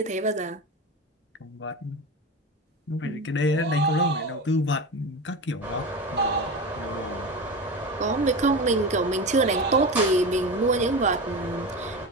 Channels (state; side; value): normal; both; correlation 0.25